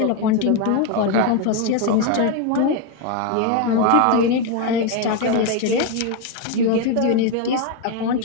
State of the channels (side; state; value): both; different; correlation 0.02